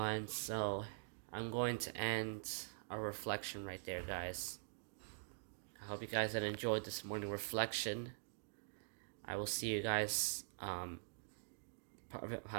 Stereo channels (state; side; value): silent; left; digital silence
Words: so I'm going to end our reflection right there, guys. I hope you guys had enjoyed this morning reflection. I will see you guys